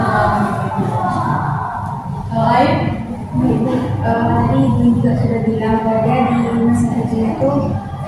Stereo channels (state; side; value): identical; both; correlation 1.00